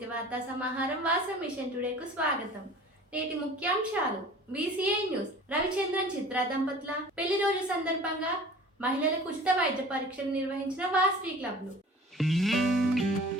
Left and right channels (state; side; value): normal; both; correlation 0.44